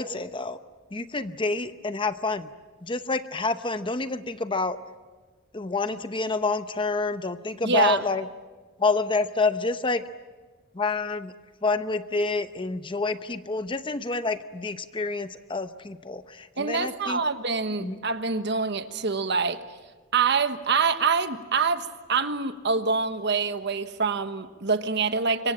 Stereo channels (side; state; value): both; normal; correlation -0.01